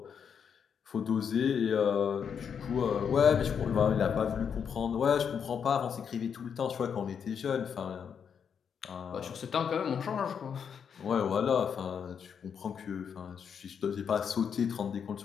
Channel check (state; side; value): quieter; right; 7.2 dB